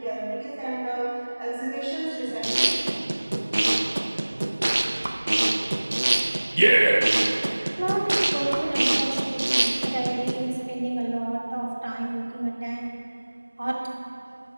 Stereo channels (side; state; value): both; inverted; correlation -1.00